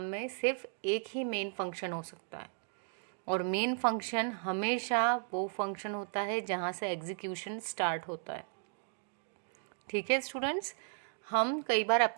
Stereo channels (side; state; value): left; silent; 54 dB below the other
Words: में सिर्फ एक ही मेन फंक्शन हो सकता है, और मेन फंक्शन हमेशा वो फंक्शन होता है जहाँ से एग्जीक्यूशन स्टार्ट होता है। ठीक है स्टूडेंट्स। हम कई बार